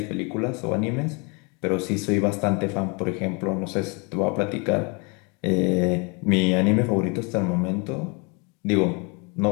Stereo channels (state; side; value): quieter; right; 31.7 dB